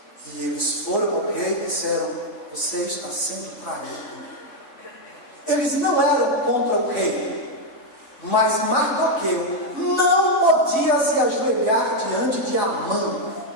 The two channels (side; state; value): right; late; 3.6 ms